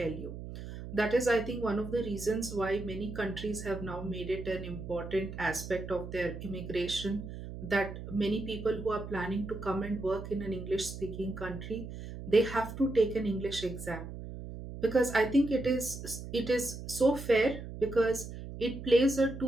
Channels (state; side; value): noise; right; hum, 10 dB below the sound